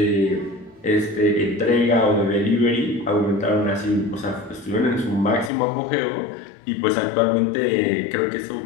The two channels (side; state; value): right; drops out; at 5.5 s